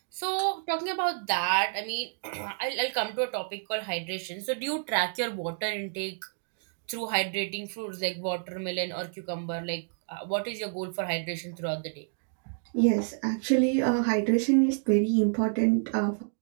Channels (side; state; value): left; silent; digital silence